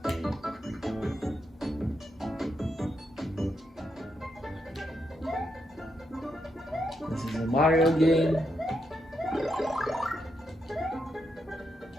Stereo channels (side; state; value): both; normal; correlation 0.81